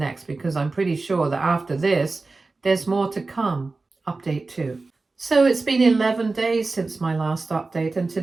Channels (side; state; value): left; quieter; 3.6 dB